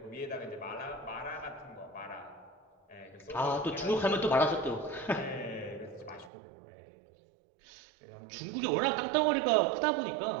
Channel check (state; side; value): drops out; left; at 6.3 s